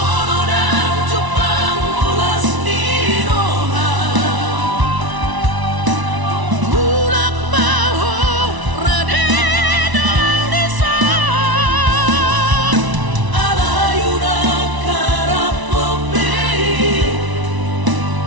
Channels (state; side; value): late; left; 1.0 ms